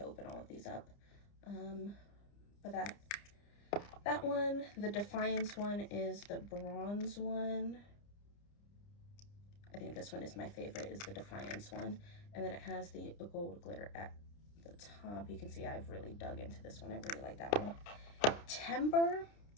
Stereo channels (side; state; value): right; late; 30 ms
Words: open all of these up. But that one, the Defiance one, is the bronze one. I think this one is my favorite, is the Defiance one. And then it has the gold glitter at the top. You can see I've really dug into this one. I really like that one. Timber,